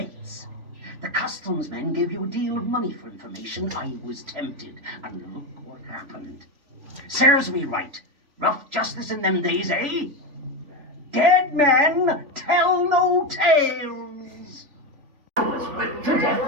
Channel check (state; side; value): late; left; 3.4 ms